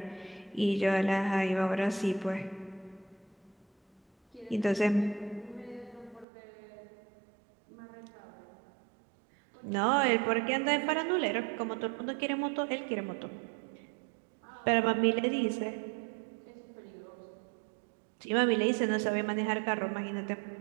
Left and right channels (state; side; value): drops out; left; at 6.2 s